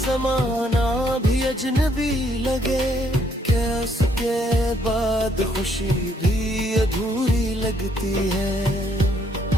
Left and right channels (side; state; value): both; normal; correlation 0.69